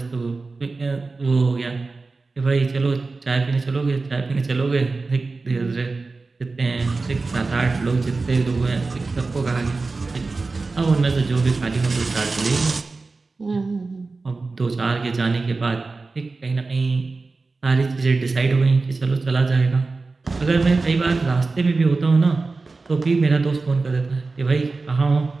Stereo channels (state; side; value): quieter; left; 3.8 dB